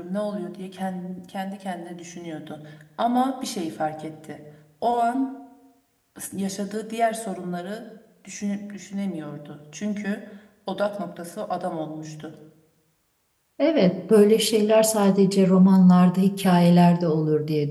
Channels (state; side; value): identical; both; correlation 1.00